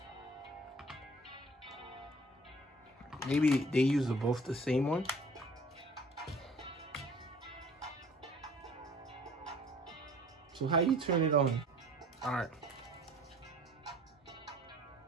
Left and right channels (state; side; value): normal; both; correlation 0.51